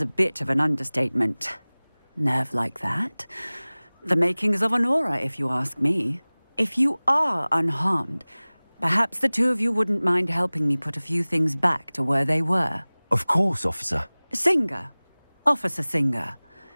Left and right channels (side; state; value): both; inverted; correlation -1.00